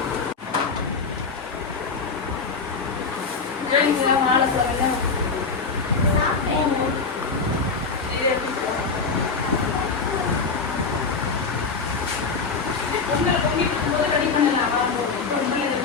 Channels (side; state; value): right; quieter; 4.7 dB